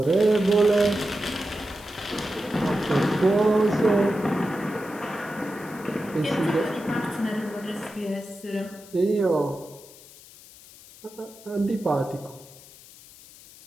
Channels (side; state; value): left; noise; hiss, 21 dB below the sound